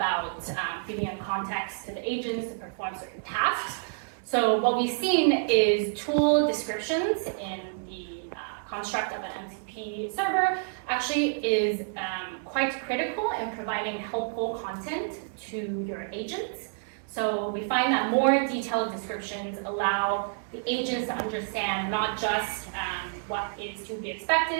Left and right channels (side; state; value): left; silent; digital silence